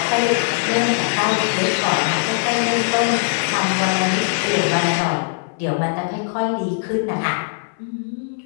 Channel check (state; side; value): silent; right; 66 dB below the other